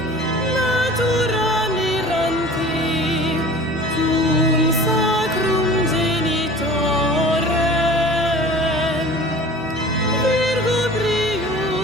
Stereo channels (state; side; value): normal; both; correlation 0.42